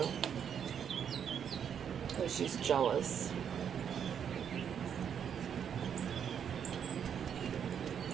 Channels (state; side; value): quieter; left; 8.1 dB